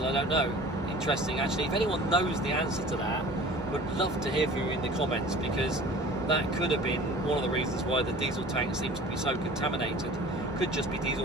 I don't know. Interesting actually. If anyone knows the answer to that, would love to hear from you in the comments, because that could have been one of the reasons why the diesel tank seems to be so contaminated. Could just be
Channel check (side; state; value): both; normal; correlation 0.44